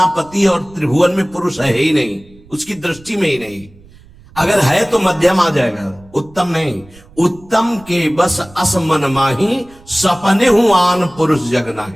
पति और त्रिभुवन में पुरुष है ही नहीं, उसकी दृष्टि में ही नहीं। अगर है तो मध्यम आ जाएगा, उत्तम नहीं। उत्तम के बस अस मन माही सपने हूं आन पुरुष जग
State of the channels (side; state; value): right; noise; rumble, 25 dB below the sound